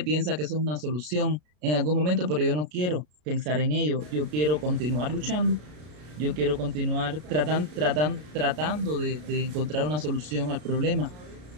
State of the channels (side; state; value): left; late; 33 ms